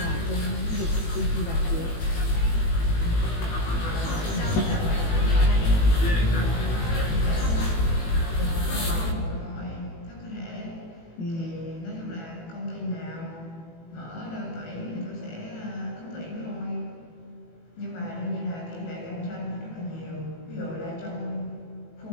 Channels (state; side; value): late; right; 18 ms